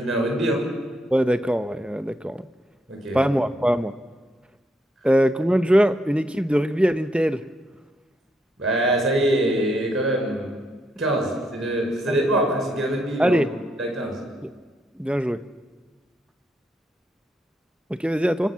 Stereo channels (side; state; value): both; normal; correlation 0.78